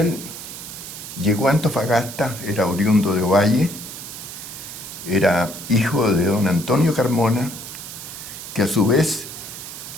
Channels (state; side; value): noise; right; hiss, 11 dB below the sound